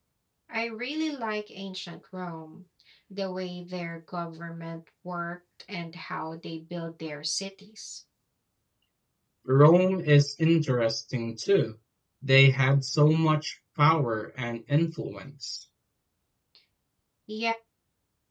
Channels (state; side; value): identical; both; correlation 1.00